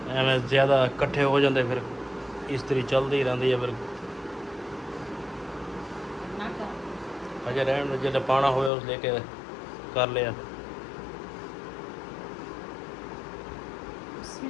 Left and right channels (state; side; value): drops out; right; at 8.7 s